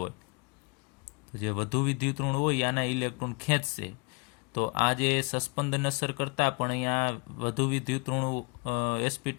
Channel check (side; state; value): right; quieter; 31.0 dB